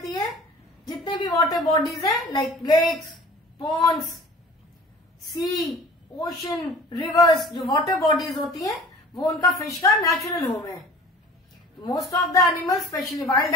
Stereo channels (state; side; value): normal; both; correlation 0.44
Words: है, जितने भी वाटर बॉडीज हैं like lakes, ponds, sea, ocean, rivers, जो वाटर बॉडीज होती हैं वो उनका फिश का नेचुरल होम है। Most of the animals, specially wild